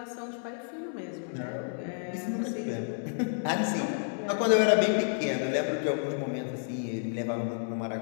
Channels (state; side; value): silent; right; digital silence